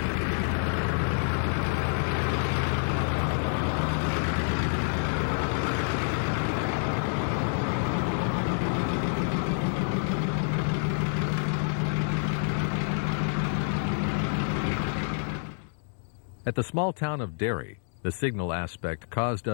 At the small town of Derry, the signal aspect caused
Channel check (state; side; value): silent; right; 59 dB below the other